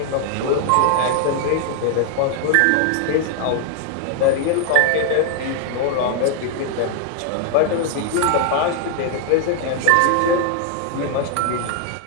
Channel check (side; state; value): both; different; correlation 0.00